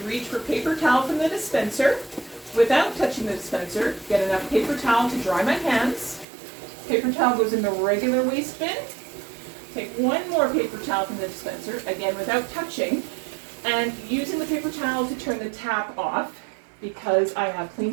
reach for paper towel from the dispenser. Without touching the dispenser, get enough paper towel to dry my hands. Paper towel goes in the regular waste bin. Take one more paper towel from the dispenser, again without touching, and using the paper towel to turn the tap off because I have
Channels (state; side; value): drops out; left; at 6.2 s